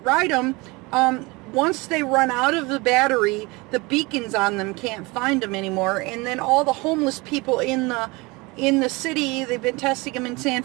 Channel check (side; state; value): left; quieter; 24.9 dB